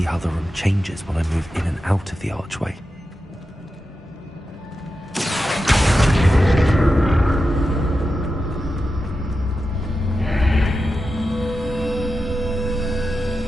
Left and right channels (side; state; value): both; normal; correlation 0.90